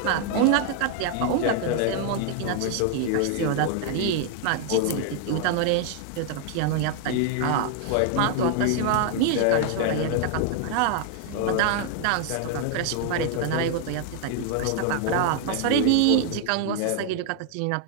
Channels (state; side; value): different; both; correlation 0.00